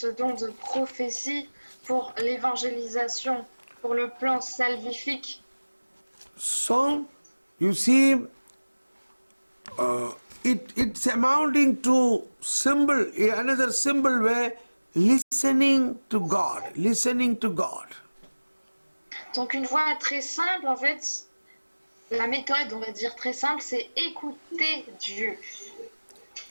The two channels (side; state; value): both; inverted; correlation -1.00